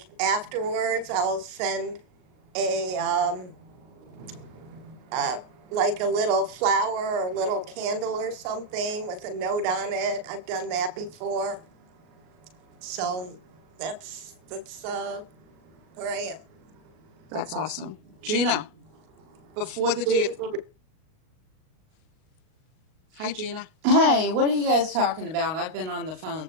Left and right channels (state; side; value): late; left; 38 ms